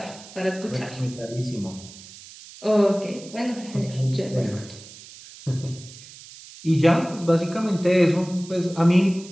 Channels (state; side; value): noise; right; hiss, 18 dB below the sound